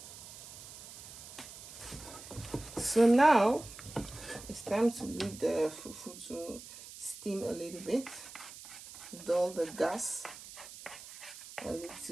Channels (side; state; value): right; noise; hiss, 15 dB below the sound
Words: so now it's time to leave the fufu to steam a little bit, dull the gas a